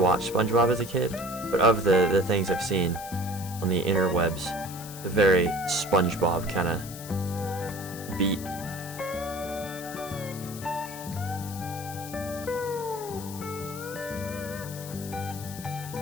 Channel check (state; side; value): noise; left; hiss, 13 dB below the sound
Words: SpongeBob as a kid, but of the things I've seen on the interwebs, the very SpongeBob kind of beat.